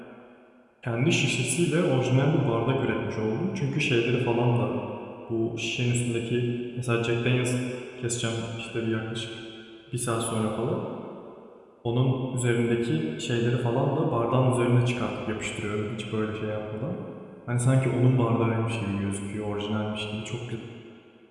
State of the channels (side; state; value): both; identical; correlation 1.00